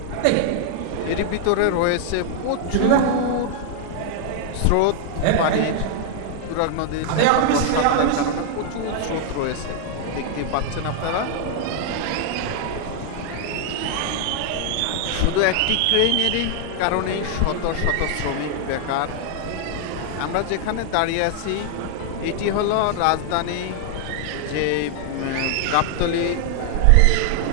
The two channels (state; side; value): different; both; correlation 0.00